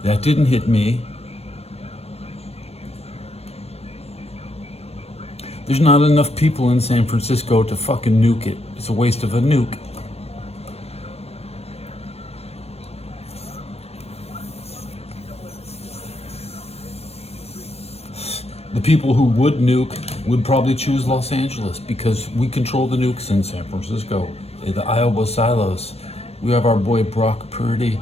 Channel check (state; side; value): late; right; 0.30 ms